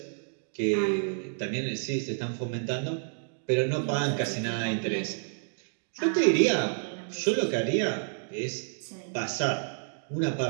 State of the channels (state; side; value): silent; left; digital silence